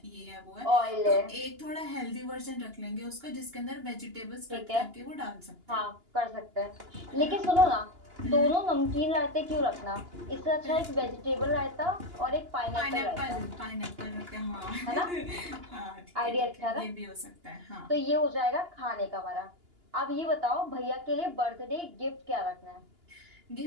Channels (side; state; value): left; late; 2.9 ms